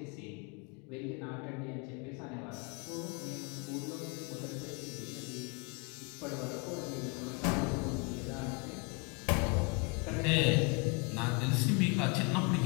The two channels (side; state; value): right; quieter; 31.3 dB